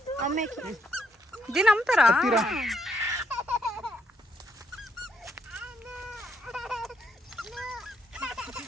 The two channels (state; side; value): normal; both; correlation 0.74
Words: అమ్మేకి. దీన్ని అమ్ముతారా?